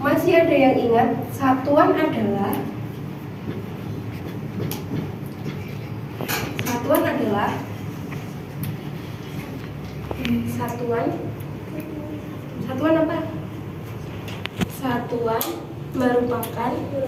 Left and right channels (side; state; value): both; identical; correlation 1.00